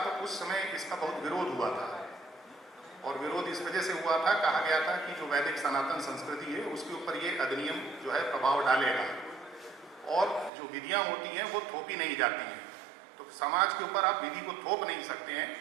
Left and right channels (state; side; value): drops out; left; at 10.5 s